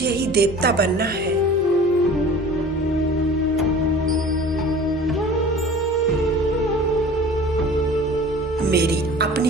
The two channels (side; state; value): both; normal; correlation 0.42